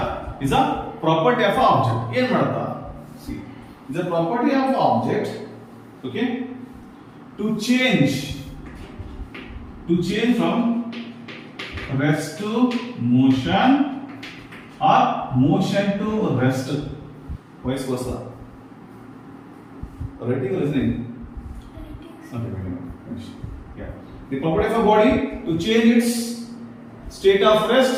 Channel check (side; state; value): both; identical; correlation 1.00